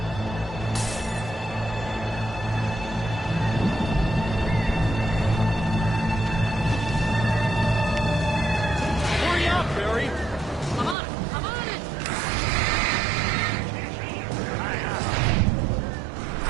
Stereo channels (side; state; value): left; drops out; at 11.0 s